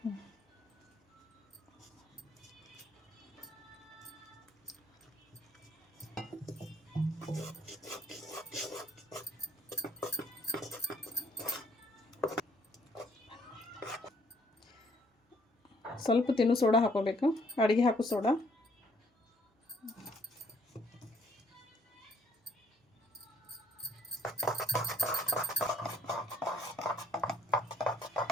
ಸ್ವಲ್ಪ ತಿನ್ನು ಸೋಡಾ ಹಾಕೋಬೇಕು, ಅಡುಗೆ ಹಾಕೋ ಸೋಡಾ.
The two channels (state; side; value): normal; both; correlation 0.63